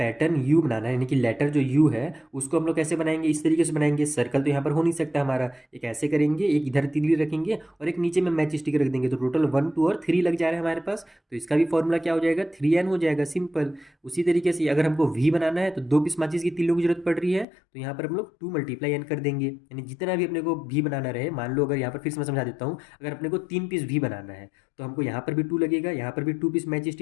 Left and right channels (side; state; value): right; drops out; at 17.4 s